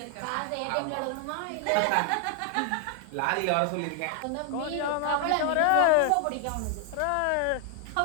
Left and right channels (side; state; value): both; different; correlation 0.00